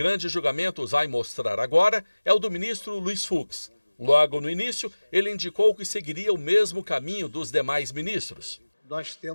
Julgamento vai mostrar agora é o do ministro Luiz Fux. Logo no início, ele indicou que seguiria o mesmo caminho dos demais ministros. Nós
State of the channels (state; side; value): inverted; both; correlation -1.00